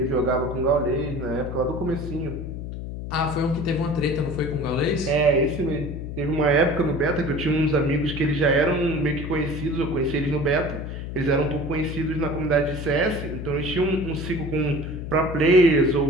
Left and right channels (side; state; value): left; noise; hum, 7 dB below the sound